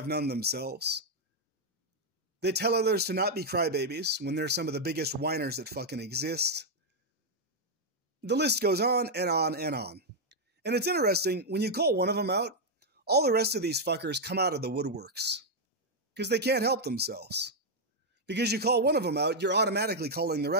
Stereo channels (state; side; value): normal; both; correlation -0.01